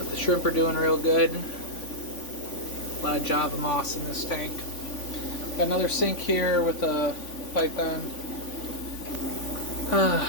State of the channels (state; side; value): late; right; 3.5 ms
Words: The shrimp are doing real good. A lot of Java moss in this tank. Got another sink here with a python.